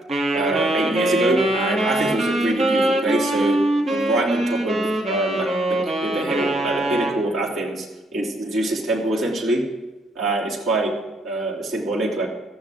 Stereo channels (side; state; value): both; normal; correlation 0.71